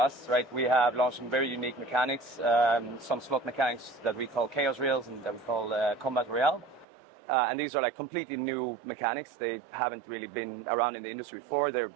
right? We have launched some very unique mechanics, some slot mechanics that we call Chaos Reels and that we call Combat Royale. And these are like completely new mechanics. They haven't really been around in the industry before. They're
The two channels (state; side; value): drops out; left; at 6.9 s